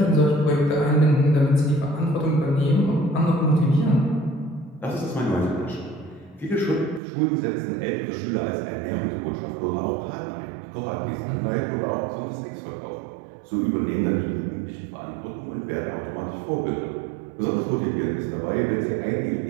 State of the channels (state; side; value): drops out; left; at 7.0 s